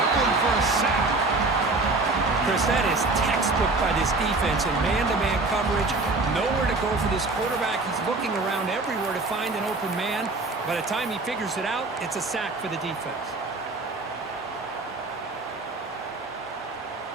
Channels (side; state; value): left; quieter; 3.4 dB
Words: him for a sack. Chris, that is textbook by this defense in man-to-man coverage. Nowhere to go for this quarterback. He's looking around everywhere to find an open man. By the time he figures it out, it's a sack for the defense.